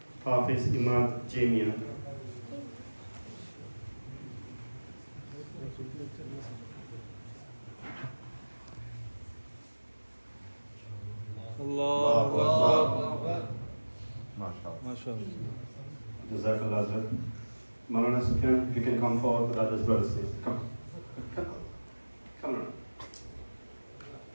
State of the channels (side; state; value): both; inverted; correlation -1.00